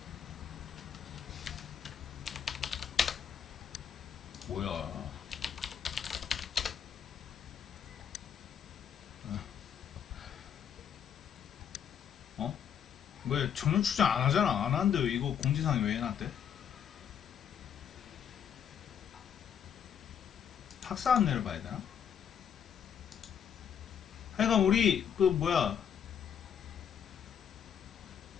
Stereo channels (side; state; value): right; quieter; 8.3 dB